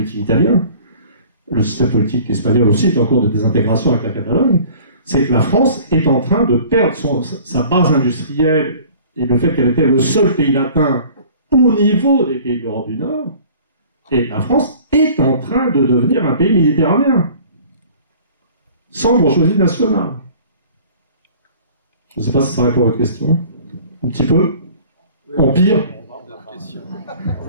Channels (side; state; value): both; inverted; correlation -0.48